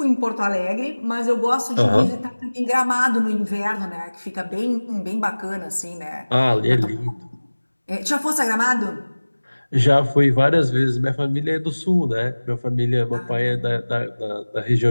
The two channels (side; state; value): both; inverted; correlation -1.00